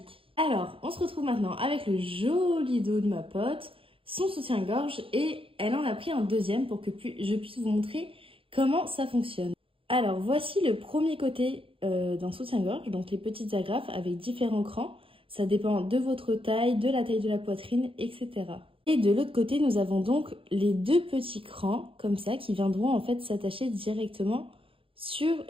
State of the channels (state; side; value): late; left; 0.26 ms